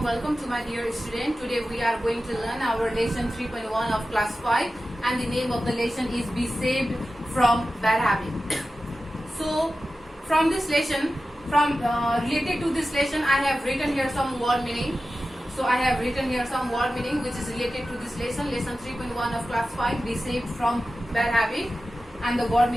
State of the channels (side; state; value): both; normal; correlation 0.94